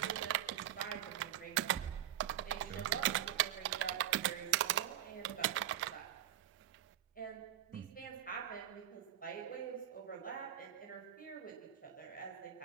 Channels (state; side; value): quieter; left; 12.0 dB